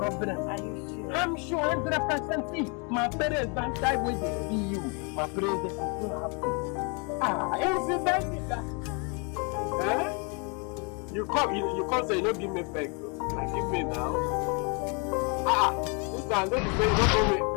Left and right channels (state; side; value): quieter; right; 34.4 dB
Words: Are you sure? I'm sure 100%. See, my parents don't die when they see you. My parents, they are so happy. Incident is that. Eh? You come say you don't give me back. Like give me now. This time don't be saying don't go away.